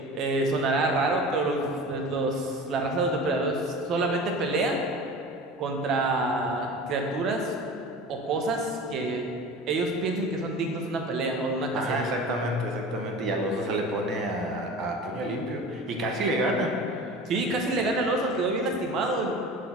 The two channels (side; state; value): both; normal; correlation 0.36